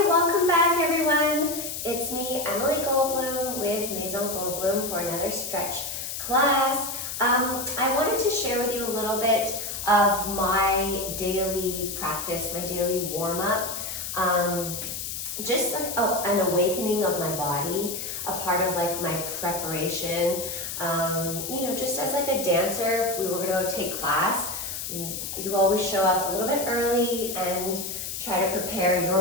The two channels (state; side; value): noise; left; hiss, 5 dB below the sound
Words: welcome back everyone. It's me, Emily Goldblum with Maison Goldblum for another stretch class. I wanted to share with you a little bit of my daily practice, my daily warm-up. Just like an awakening of my body, a part of like my preparation. Just as like a dancer, if we were gonna take class, you always show up a little bit early and try to prepare your